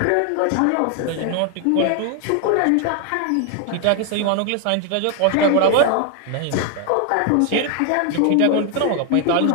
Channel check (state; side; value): different; both; correlation 0.00